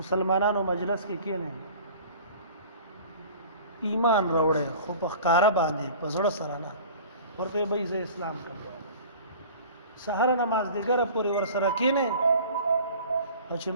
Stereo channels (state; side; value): inverted; both; correlation -0.43